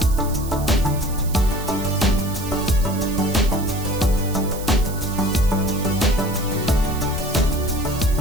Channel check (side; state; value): right; noise; hiss, 14 dB below the sound